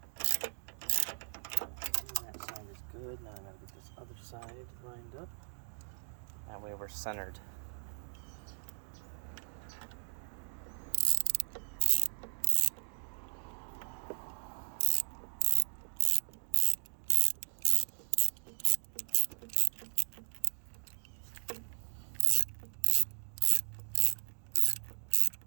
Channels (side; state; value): left; silent; digital silence